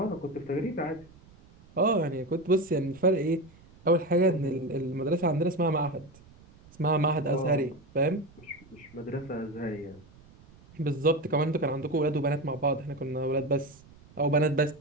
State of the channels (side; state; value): right; noise; rumble, 25 dB below the sound